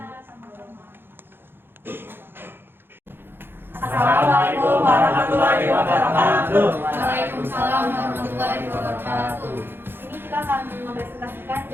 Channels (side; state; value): left; late; 0.10 ms